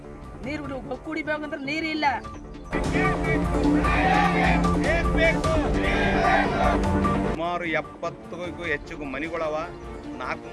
ನೀರು ಕುಡಿಬೇಕಂದ್ರೆ ನೀರು ಇಲ್ಲ. ಸುಮಾರು 70ಕ್ಕೂ ಹೆಚ್ಚು ಮನೆಗಳವ,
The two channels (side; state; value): both; identical; correlation 1.00